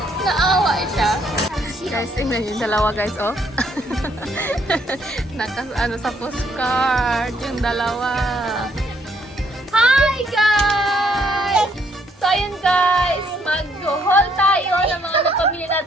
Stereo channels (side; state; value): both; normal; correlation 0.69